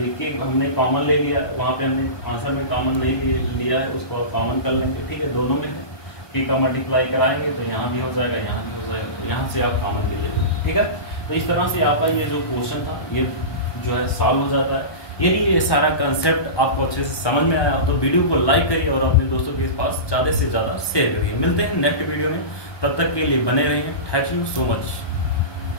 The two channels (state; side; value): late; right; 1.2 ms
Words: कि हमने कॉमन ले लिया, वहाँ पे हमने आंसर में कॉमन नहीं लिया है, उसको कॉमन कर लेंगे। ठीक है, दोनों में है कि का मल्टीप्लाई कराएंगे तो यहाँ भी हो जाएगा यहाँ भी हो जाएगा, तो यहाँ से आप कॉमन ले लेंगे। ठीक है, तो इस तरह से आपका ये जो क्वेश्चन था ये जो है सॉल्व हो जाता है। यदि ये सारा कंसेप्ट आपको अच्छे से समझ में आया तो वीडियो को लाइक करिए और अपने दोस्तों के पास ज़्यादा से ज़्यादा शेयर करिए। मिलते हैं नेक्स्ट वीडियो में, तब तक के लिए बने रहिए। Thank you so much.